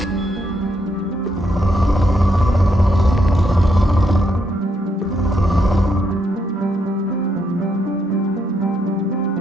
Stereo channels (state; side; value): normal; both; correlation 0.77